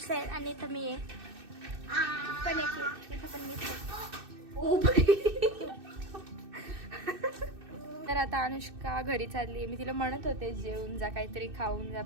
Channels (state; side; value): late; left; 2.6 ms